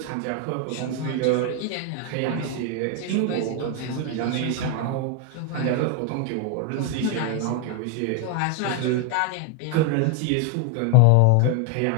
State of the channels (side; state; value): both; different; correlation 0.01